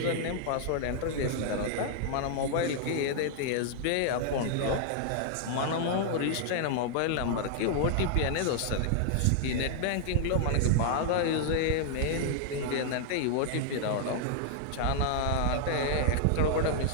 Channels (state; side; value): different; both; correlation -0.01